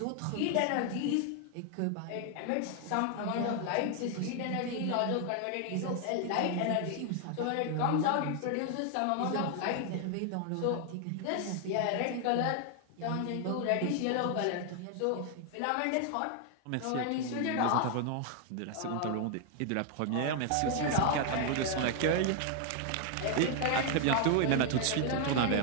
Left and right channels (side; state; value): both; different; correlation 0.00